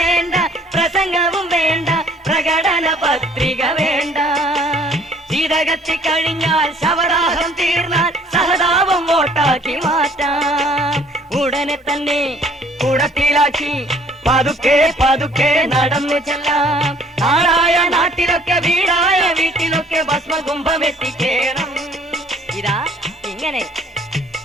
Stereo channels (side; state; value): both; normal; correlation 0.58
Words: പ്രസംഗവും വേണ്ട, പ്രകടന പത്രിക വേണ്ട. ശീതകത്തി കഴിഞ്ഞാൽ ശവദാഹം തീർന്നാൽ സഹതാപം വോട്ടാക്കി മാറ്റാം. ഉടനെ തന്നെ കുടത്തിലാക്കി പതുക്കെ പതുക്കെ നടന്നു ചെല്ലാം. നാടായ നാട്ടിലൊക്കെ വീടായ വീട്ടിലൊക്കെ ഭസ്മകുംഭം എത്തിക്കേണം. ഇതാ ഇങ്ങനെ